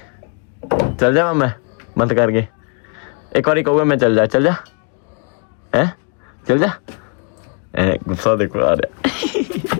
ਚੱਲ ਜਾਵਾਂ ਮੈਂ ਬੰਦ ਕਰਕੇ? ਇੱਕ ਵਾਰੀ ਕਹੂਗਾ ਮੈਂ ਚੱਲ ਜਾ ਹੈ ਚੱਲ ਜਾ। ਗੁੱਸਾ ਦੇਖੋ ਆ ਰਿਹਾ।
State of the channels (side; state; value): right; quieter; 38.4 dB